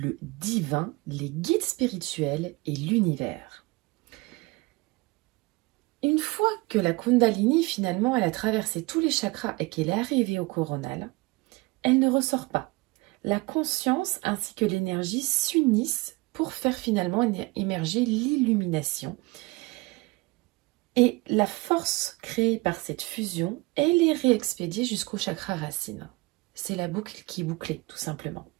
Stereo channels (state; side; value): quieter; left; 23.9 dB